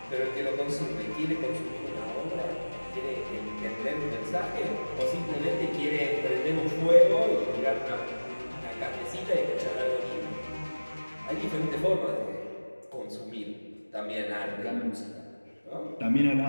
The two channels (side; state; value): both; inverted; correlation -1.00